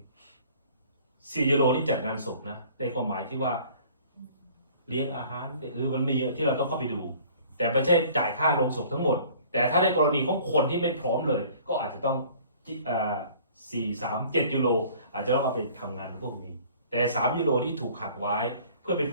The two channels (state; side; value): inverted; both; correlation -0.51